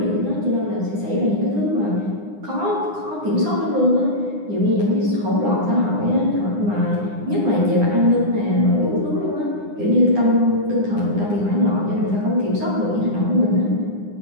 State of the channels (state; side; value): late; left; 9.8 ms